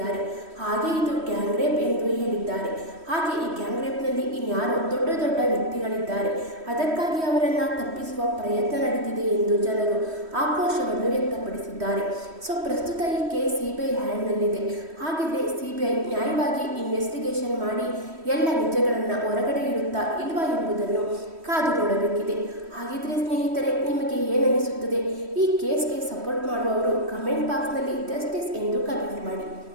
ಹಾಗೆ ಇದು ಗ್ಯಾಂಗ್ ರೇಪ್ ಎಂದು ಹೇಳಿದ್ದಾರೆ. ಹಾಗೆ ಈ ಗ್ಯಾಂಗ್ ರೇಪ್ನಲ್ಲಿ ಇನ್ಯಾರೋ ದೊಡ್ಡ ದೊಡ್ಡ ವ್ಯಕ್ತಿಗಳಿದ್ದಾರೆ, ಅದಕ್ಕಾಗಿ ಅವರನ್ನು ತಪ್ಪಿಸುವ ಪ್ರಯತ್ನ ನಡೆದಿದೆ ಎಂದು ಜನರು ಆಕ್ರೋಶವನ್ನು ವ್ಯಕ್ತಪಡಿಸಿದ್ದಾರೆ. ಸೊ ಪ್ರಸ್ತುತ ಈ ಕೇಸ್ CBI ಹ್ಯಾಂಡ್ನಲ್ಲಿದೆ. ಹಾಗಿದ್ರೆ CBI ನ್ಯಾಯವಾಗಿ ಇನ್ವೆಸ್ಟಿಗೇಷನ್ ಮಾಡಿ ಎಲ್ಲ ನಿಜಗಳನ್ನು ಹೊರಗಡೆ ಇಡುತ್ತಾ ಇಲ್ವಾ ಎಂಬುದನ್ನು ಕಾದು ನೋಡಬೇಕಿದೆ. ಹಾಗಿದ್ರೆ ಸ್ನೇಹಿತರೆ, ನಿಮಗೆ ಏನನಿಸುತ್ತದೆ? ಈ ಕೇಸ್ಗೆ ಸಪೋರ್ಟ್ ಮಾಡುವವರು ಕಮೆಂಟ್ ಬಾಕ್ಸ್ನಲ್ಲಿ ಜಸ್ಟಿಸ್ ಎಂದು ಕಮೆಂಟ್ ಮಾಡಿ.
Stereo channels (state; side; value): late; left; 3.1 ms